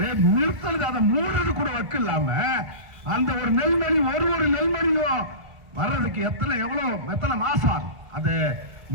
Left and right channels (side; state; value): left; late; 1.5 ms